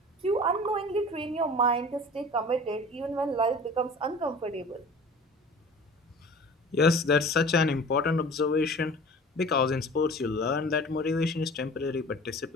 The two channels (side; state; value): both; normal; correlation 0.42